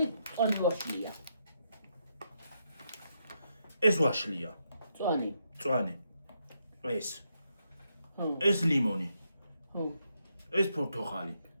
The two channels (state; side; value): inverted; both; correlation -0.80